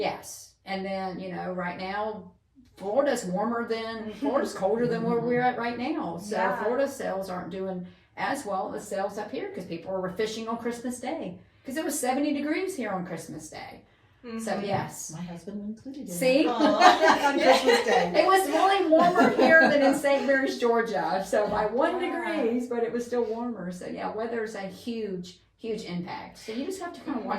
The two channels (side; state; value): both; identical; correlation 1.00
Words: And then, right now, Florida's colder than where we're at right now. So Yeah. Florida sales aren't doing as well as sales up here because people were fishing on Christmas Day. Because it was 70 degrees here on Christmas Day. Mm-hmm. So yes. My husband included. See? On Christmas Day. It was really warmer here than in St. Mary's, Georgia. So by 1 degrees, but it was still warmer. So yeah, weather's a huge, huge impact. So you just have to kind of